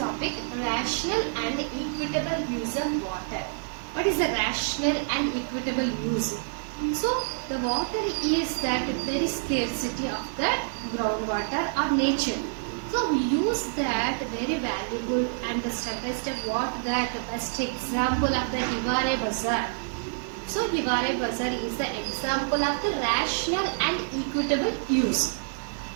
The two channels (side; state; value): left; silent; digital silence